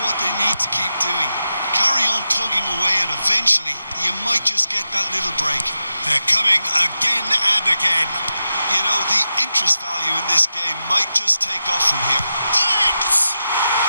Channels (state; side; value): inverted; both; correlation -0.90